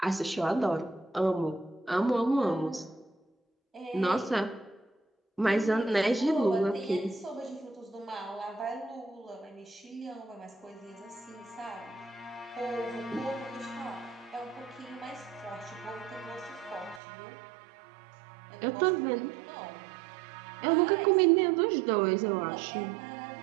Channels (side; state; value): left; drops out; at 17.0 s